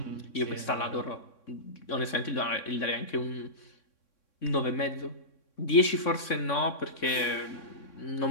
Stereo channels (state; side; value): late; right; 3.6 ms